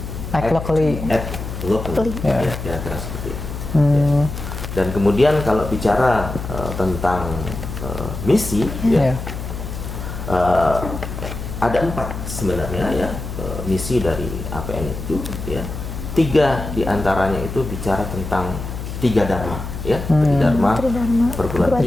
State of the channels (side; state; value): left; noise; hum, 7 dB below the sound